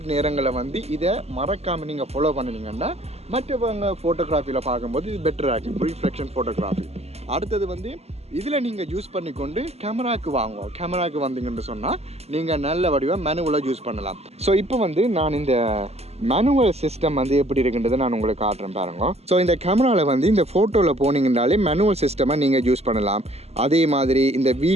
நேரங்களில் வந்து இதை மறக்காமல் நீங்கள் ஃபாலோ பண்ணினீங்கன்னா மற்றவங்க ஃபோட்டோகிராஃபியில் பார்க்கும்போது இது பெட்டராக இருக்கும், ரீஃப்ளெக்ஷன் ஃபோட்டோகிராஃபி. அடுத்தது வந்து இதில் நீங்கள் யூஸ் பண்ணிக்கொண்டு கேமராவுக்கு வாங்குவோம். கேமராவுக்கு வந்தீங்கன்னு சொன்னால் நீங்கள் நல்ல வடிவாக மேனுவலாக யூஸ் பண்ணலாம். ஸோ இப்போ வந்து நான் இந்த மேனுவல் சிஸ்டம் வந்து எப்படி இருக்குன்றதை நான் உங்களுக்கு காட்டுறேன் பாருங்க. ஸோ இந்த கேமராவில் வந்து இந்த ஃபோட்டோவில் போனீங்கன்னாலே மேனுவல் சிஸ்டமாக நீங்கள் யூஸ் பண்ணலாம். அதே மாதிரி இந்த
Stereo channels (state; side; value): late; left; 0.30 ms